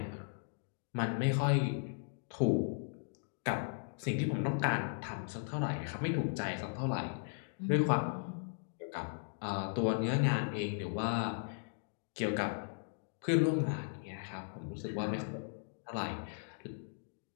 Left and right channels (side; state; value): right; silent; digital silence